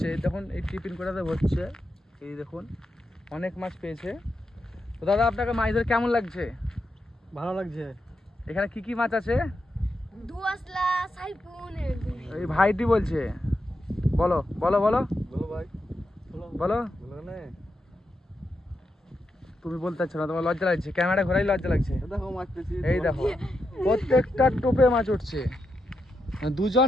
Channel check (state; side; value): normal; both; correlation 0.85